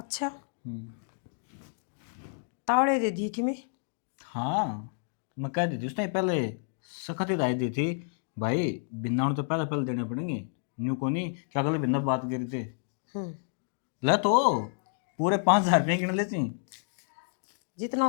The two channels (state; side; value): silent; right; digital silence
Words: तावड़े दे दी कि मैं। हाँ मैं कह दी थी उसने पहले, सख्त हिदायत दी थी भाई, बिन्ना तो पहले पहले देने पड़ेंगे, न्यू को नहीं क्या कल बिन्ना बात करी थे। ले तो पूरे 5,000 रुपये गिन लेती।